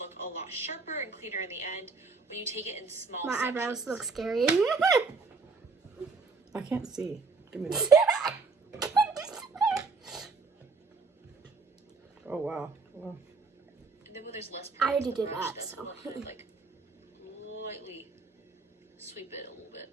a lot sharper and cleaner in the end when you take it in small My sections. eyebrows look scary. I can't see. Give me this. Oh wow. Wow. And then when there's less I already product on did the brush, that, that's so. when I'll kind of like lightly sweep it a little bit.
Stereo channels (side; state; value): left; quieter; 4.3 dB